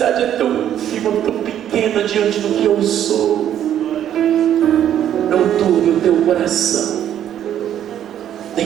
é tão ínfima, tão pequena diante do que eu sou. Não turbe o teu coração,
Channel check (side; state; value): left; quieter; 10.5 dB